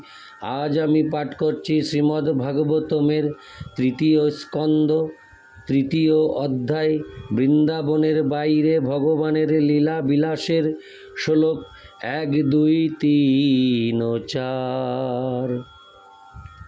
আজ আমি পাঠ করছি শ্রীমদ্ ভাগবতমের 3য় স্কন্দ 3য় অধ্যায় বৃন্দাবনের বাইরে ভগবানের লীলা বিলাসের শ্লোক 1, 2, 3 ও 4।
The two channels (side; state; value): both; identical; correlation 1.00